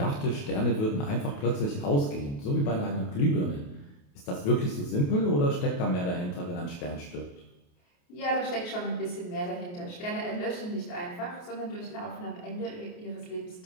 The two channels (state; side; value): late; right; 28 ms